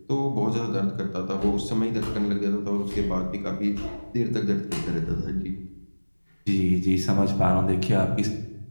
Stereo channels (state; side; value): inverted; both; correlation -1.00